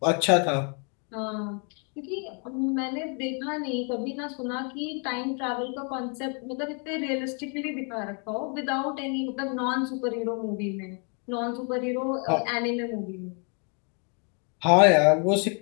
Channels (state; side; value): quieter; right; 39.0 dB